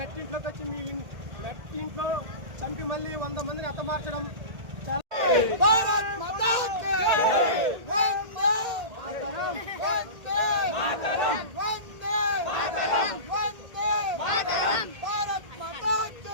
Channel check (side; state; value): left; late; 1.8 ms